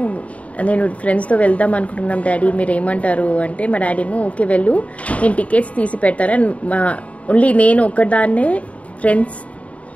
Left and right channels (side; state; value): right; late; 0.066 ms